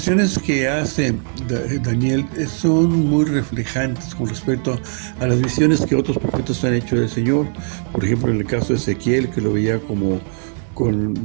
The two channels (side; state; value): left; silent; 58 dB below the other